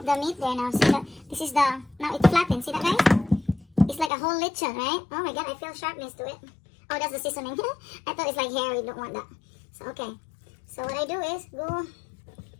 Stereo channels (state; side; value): drops out; right; at 4.1 s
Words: the meat there now. See that? This is the, now it's flattened. See that, guys? It's like a whole lechon, right? Oh my god, I feel sharpness to it. Oh, that's the seasoning. I thought it's like hair. We don't want that. So, okay. So, what I do is go.